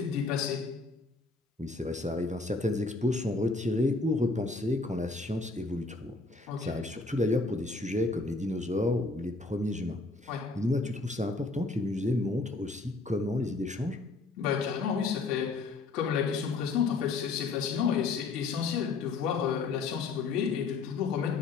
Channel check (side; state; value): right; quieter; 3.7 dB